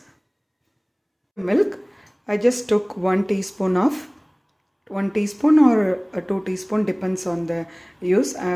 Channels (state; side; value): identical; both; correlation 1.00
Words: milk. I just took 1 teaspoon of 1 teaspoon or 2 teaspoon, depends on the use.